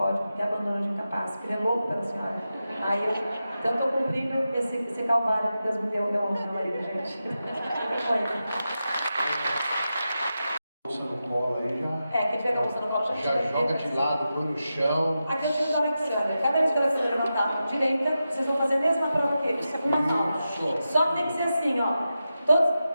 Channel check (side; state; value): both; inverted; correlation -0.90